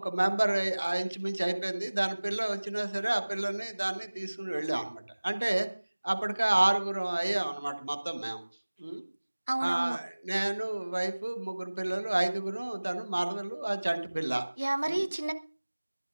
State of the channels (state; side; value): inverted; both; correlation -1.00